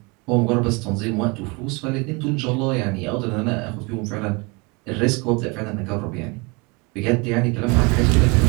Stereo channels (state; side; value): quieter; left; 28.1 dB